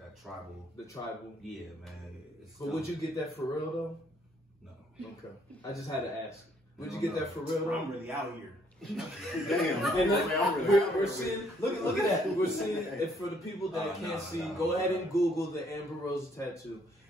tribal. The tribal. Yeah, man. But would you get that for real though? No. Okay. I just had to ask. Would you get that for real though? I'm really out here. Damn. And I'm we're seeing, look at that. We're seeing, and for the people that can't see, go ahead and Google the Amber Rose tattoo.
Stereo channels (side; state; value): both; normal; correlation 0.66